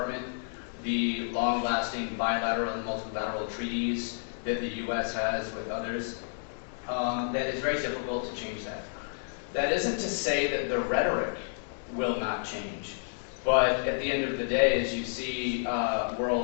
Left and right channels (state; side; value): silent; right; digital silence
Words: the long-lasting bilateral and multilateral treaties that the U.S. has with others, that it's very difficult to change that. That isn't to say that the rhetoric will not change, but at the end of the day, as you see